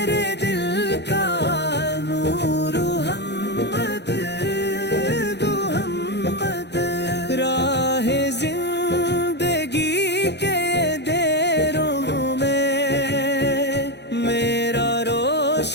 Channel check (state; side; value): late; right; 0.50 ms